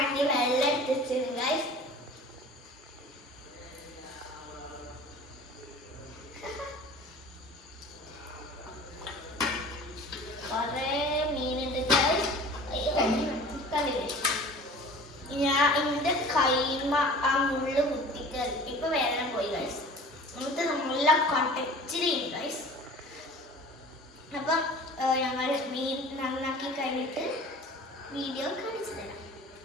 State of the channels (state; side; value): normal; both; correlation 0.43